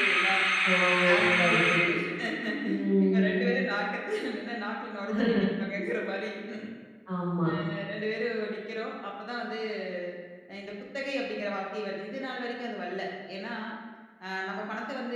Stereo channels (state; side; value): identical; both; correlation 1.00